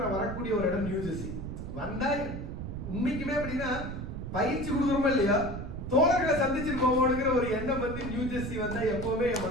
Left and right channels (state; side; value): noise; right; rumble, 7 dB below the sound